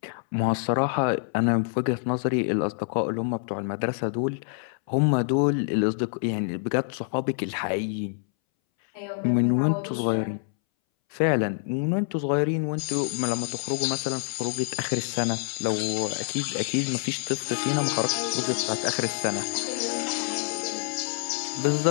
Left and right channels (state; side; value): silent; right; 60 dB below the other